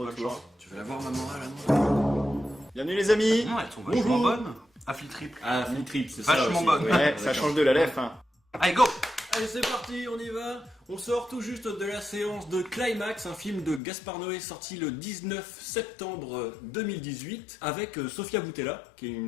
Tu veux la voir, ma morale, à moi? Bienvenue les amis. Non, elles sont vachement bonnes. Affli triple. Ah, Flip Trip, c'est ça. Vachement aussi. bonne. Ouais, ça change de la lèvre. Hein. Allez, go. Allez, c'est parti, on y va. On sort tout juste de la séance de Climax, un film de Gaspard Noé sorti le 19 septembre 2018 avec Sofia Boutella, qui est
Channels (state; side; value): drops out; right; at 13.8 s